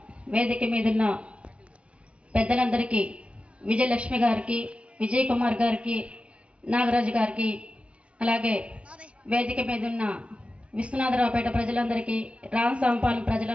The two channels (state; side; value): late; left; 0.061 ms